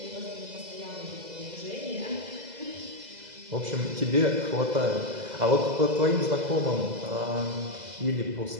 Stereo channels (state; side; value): late; left; 2.0 ms